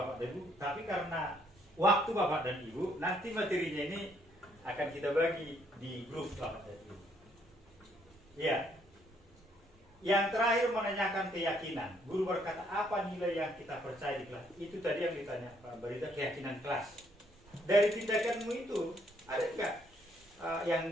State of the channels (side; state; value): both; normal; correlation 0.69